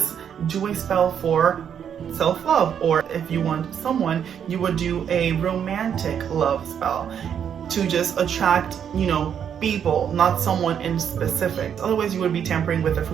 do a spell for self-love, or if you want someone, you would do a romantic love spell to just attract, people, not someone in specific. Otherwise, you would be tampering with the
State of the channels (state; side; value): quieter; left; 8.4 dB